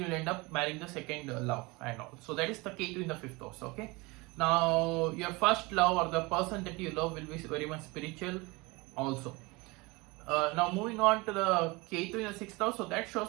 end up marrying the second love and all. So that is the Ketu in the fifth house. Okay, now your first love or the person that you love will be very much spiritual also. Now moving on to the Ketu in the sixth house, so that shows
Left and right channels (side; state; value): left; quieter; 24.5 dB